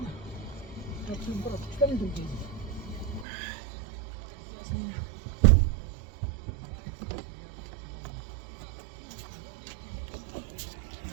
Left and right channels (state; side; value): drops out; left; at 3.2 s